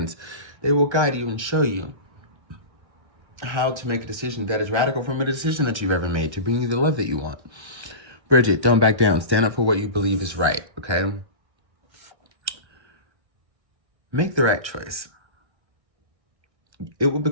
they will guide you and show you how to make a decision that is radical from a decision that you've ever made to bring you the love that you want. Bridget, don't back down. Stand up for what you believe is right, okay? Make the right choice. It will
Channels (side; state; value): left; late; 1.3 ms